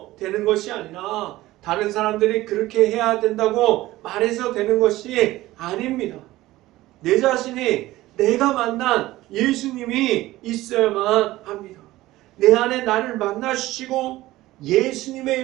되는 것이 아니라 다른 사람들이 그렇게 해야 된다고 말해서 되는 것이 아닙니다. 내 자신이 내가 만난 예수님이 있어야만 합니다. 내 안에 나를 만나주시고 예수님의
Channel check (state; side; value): quieter; left; 17.1 dB